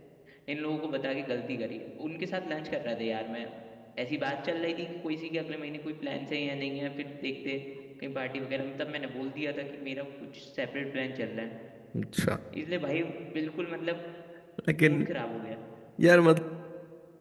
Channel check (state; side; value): identical; both; correlation 1.00